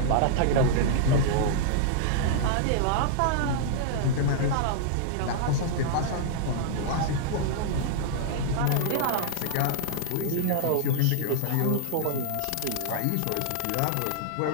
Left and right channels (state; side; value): different; both; correlation -0.01